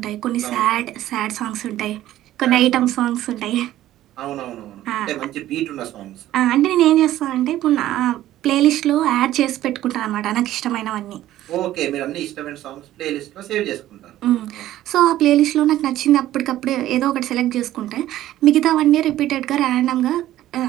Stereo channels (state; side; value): quieter; left; 13.8 dB